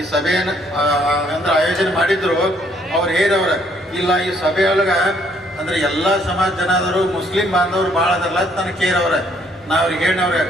ಸಭೆಯನ್ನು ಅಂದ್ರೆ ಆಯೋಜನೆ ಮಾಡಿದ್ರು, ಅವ್ರು ಹೇರವ್ರ ಇಲ್ಲ ಈ ಸಭೆಯೊಳಗ ಅಂದ್ರೆ ಎಲ್ಲಾ ಸಮಾಜ ಜನಾದರು, ಮುಸ್ಲಿಂ ಬಾಂಧವರು ಭಾಳ ಅದಲ್ಲ ನನಗೆ ಕೇರವ್ರ. ನಾ ಅವ್ರಿಗೆ ಹೇಳವ್ರೆ,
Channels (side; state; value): both; normal; correlation 0.67